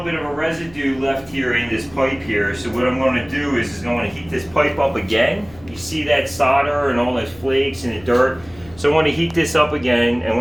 bit of a residue left here in this pipe here. So what I'm going to do is I'm going to heat this pipe up again. You see that solder and all those flakes and the dirt. So I want to heat this up again, and I'm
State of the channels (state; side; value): noise; left; hum, 23 dB below the sound